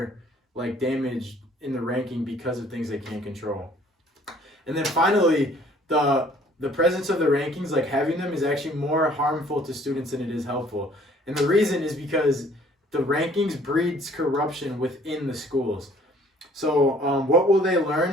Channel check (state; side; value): normal; both; correlation 0.57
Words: like damaged in the ranking because of things they can't control. And then finally, the presence of the rankings, like having them, is actually more harmful to students than it is helpful. And the reason is because the rankings breeds corruption within the schools. So what will they